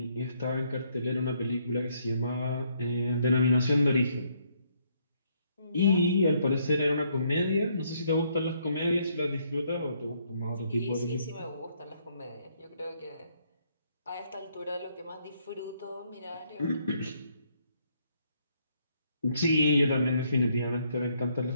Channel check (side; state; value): both; inverted; correlation -0.70